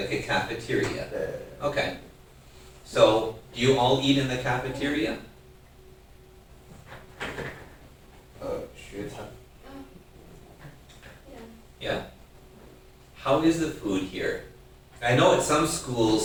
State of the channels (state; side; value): identical; both; correlation 1.00